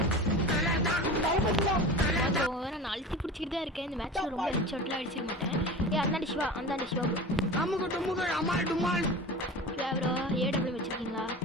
போ நான் அழுத்தி பிடிச்சிக்கிட்டு தான் இருக்கேன் இந்த மேட்ச்ல ரொம்ப ஹெட் ஷாட்லாம் அடிச்சிட மாட்டேன் அந்தாண்டி சிவா சிவா ப்ரோ ஏடபிள்யூ வச்சிருக்கீங்களா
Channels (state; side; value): normal; both; correlation 0.34